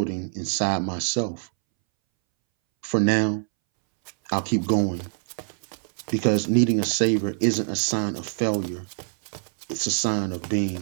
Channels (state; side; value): silent; left; 62 dB below the other